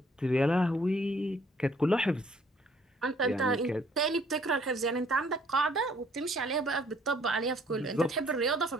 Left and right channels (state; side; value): normal; both; correlation 0.62